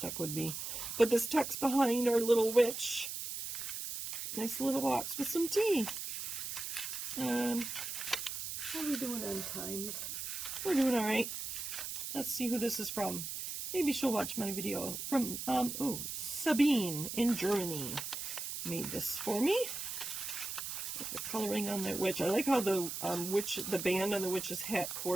would be. But this tucks behind our little witch. Nice little box with some tea. How are we doing on time? We're doing all right. Let's see who this is from. Maybe she'll watch my video. From, Sabine in Germany made this for me. The coloring on that witch. I like how the the band on the witch's hat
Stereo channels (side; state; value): right; noise; hiss, 5 dB below the sound